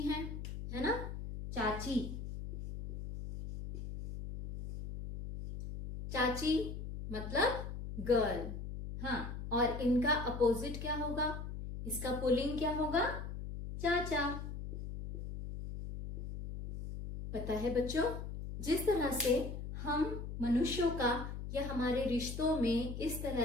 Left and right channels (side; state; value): left; noise; hum, 7 dB below the sound